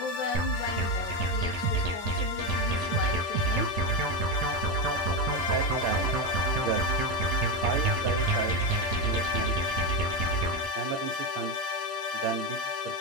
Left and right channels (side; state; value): both; normal; correlation 0.12